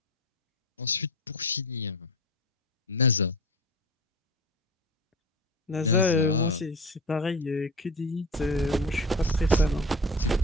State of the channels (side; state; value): both; normal; correlation 0.31